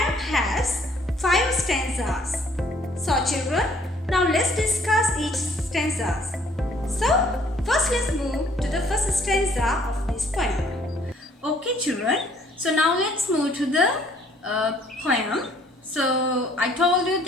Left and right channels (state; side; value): normal; both; correlation 0.62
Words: has 5 stanzas. So children, now let's discuss each stanzas. So first let's move to the first stanza of this poem. Okay children, so now let's move to the poem. So I told you